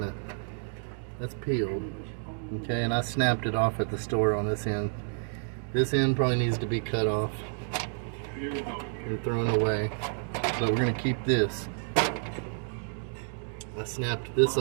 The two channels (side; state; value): left; silent; 58 dB below the other